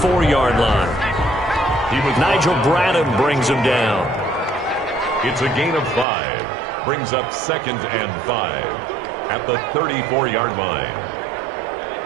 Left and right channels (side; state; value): left; drops out; at 6.1 s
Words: line. Nigel Bradham brings him down. It's a gain of 5. Brings up 2nd and 5 at the 34-yard line.